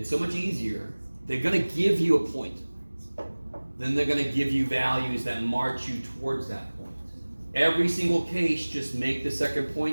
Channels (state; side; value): inverted; both; correlation -1.00